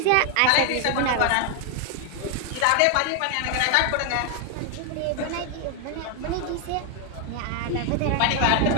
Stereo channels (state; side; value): different; both; correlation 0.01